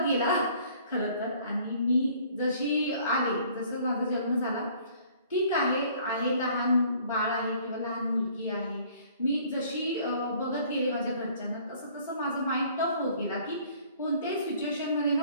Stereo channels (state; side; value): inverted; both; correlation -0.56